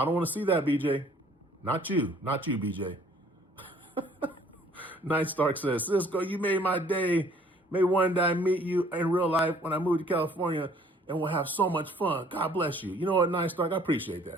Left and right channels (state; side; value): normal; both; correlation 0.58